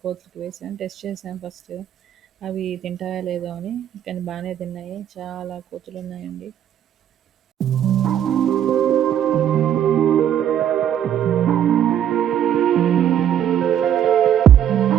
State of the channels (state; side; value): quieter; left; 10.2 dB